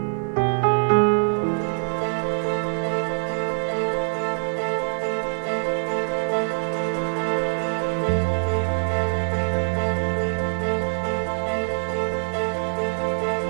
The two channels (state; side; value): silent; left; digital silence